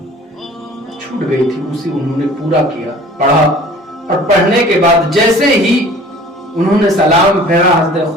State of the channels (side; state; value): both; normal; correlation 0.47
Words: छूट गई थी, उसी उन्होंने पूरा किया, पढ़ा, और पढ़ने के बाद जैसे ही उन्होंने सलाम फेरा, हज़रत